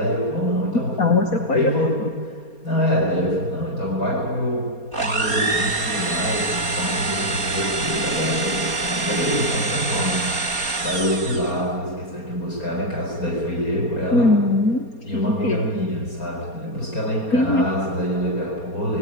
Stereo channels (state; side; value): late; right; 4.3 ms